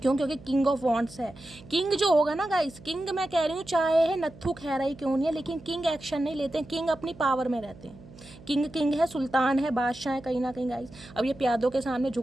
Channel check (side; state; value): right; noise; hum, 20 dB below the sound